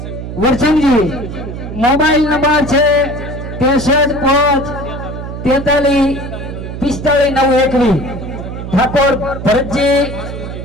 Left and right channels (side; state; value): right; noise; hum, 8 dB below the sound